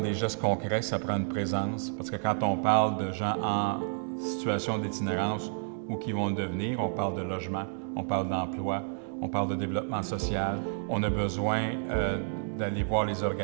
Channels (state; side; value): silent; left; digital silence